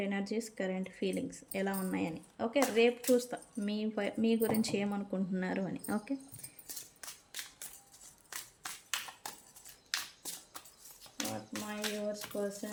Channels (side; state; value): both; identical; correlation 1.00